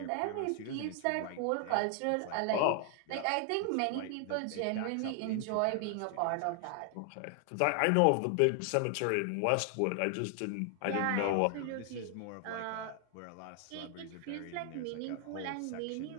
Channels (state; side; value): different; both; correlation 0.00